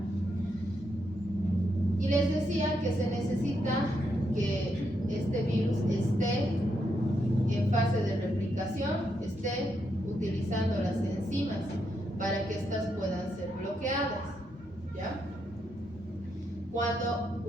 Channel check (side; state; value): both; normal; correlation 0.80